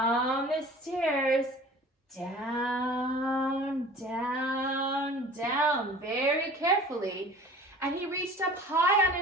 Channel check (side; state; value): both; normal; correlation 0.43